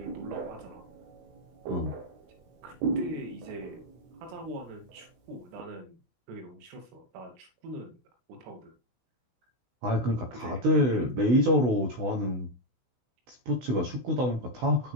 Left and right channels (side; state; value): left; late; 16 ms